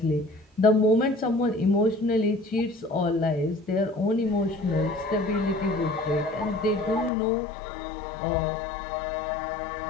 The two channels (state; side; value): drops out; right; at 7.1 s